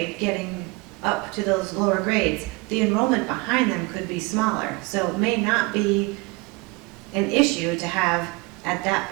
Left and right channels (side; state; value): left; quieter; 25.4 dB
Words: getting up to those lower grades, the enrollment behind them could be smaller. So it may not be an issue to have at